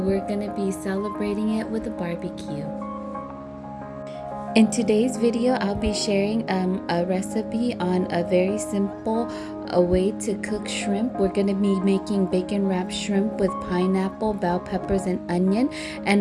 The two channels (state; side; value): identical; both; correlation 1.00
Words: gonna be celebrating it with a barbecue. In today's video, I'll be sharing a recipe on a very simple way to cook shrimp. We're gonna be making bacon wrapped shrimp with pineapple, bell peppers, and onion,